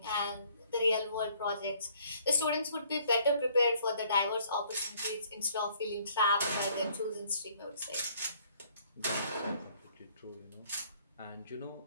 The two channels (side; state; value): both; inverted; correlation -0.61